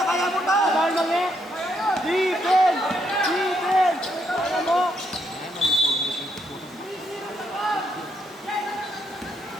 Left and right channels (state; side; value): normal; both; correlation 0.77